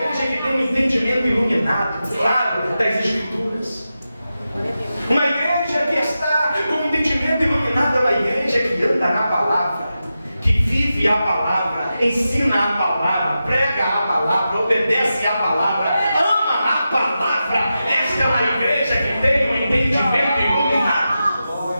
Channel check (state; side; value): inverted; both; correlation -0.91